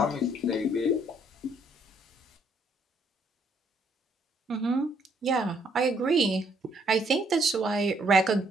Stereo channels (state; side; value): normal; both; correlation 0.68